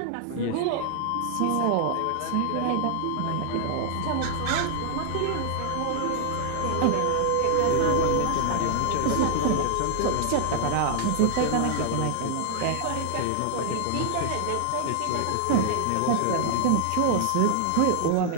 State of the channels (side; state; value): both; different; correlation 0.00